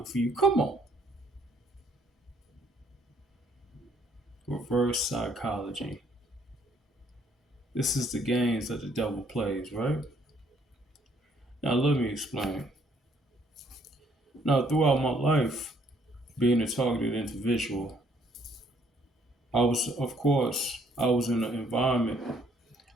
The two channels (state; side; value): normal; both; correlation 0.66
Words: for you. Come on. Reverse psychology. This is the games that the devil plays, right? Now let me explain. Now, throughout my life, being a targeted individual, I was in an environment